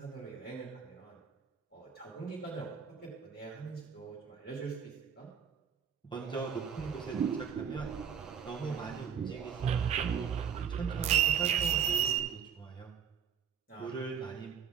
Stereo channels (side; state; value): left; quieter; 7.7 dB